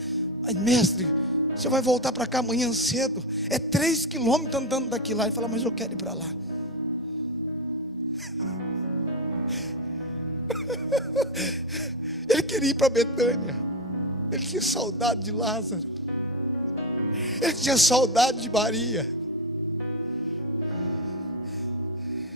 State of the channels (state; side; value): normal; both; correlation 0.14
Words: Mas mestre, você vai voltar para cá amanhã cedo, é 3 quilômetros andando daqui lá. Ele falou: mas eu quero ir para lá. Ele queria ir para Betânia. Ele tinha saudade de Lázaro. Ele tinha saudade de Maria.